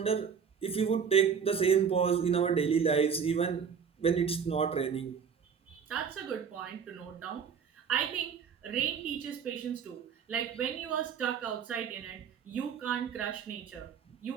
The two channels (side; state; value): left; quieter; 6.8 dB